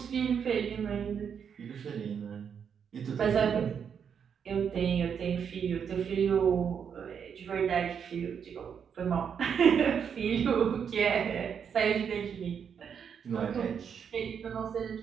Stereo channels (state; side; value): quieter; left; 7.4 dB